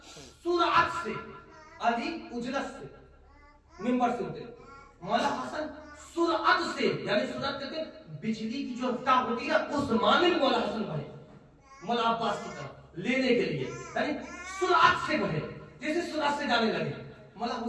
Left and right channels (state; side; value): identical; both; correlation 1.00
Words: सुरअत से, अली उजलत से मिंबर से उतरे। मौला हसन सुरअत से, यानी सुरअत कहते हैं बिजली की जो रफ्तार होती है उस माने में मौला हसन बढ़े मौला अब्बास की तरफ लेने के लिए, यानी सुरअत से बढ़े, जैसे सुरअत से जाने लगे। मौला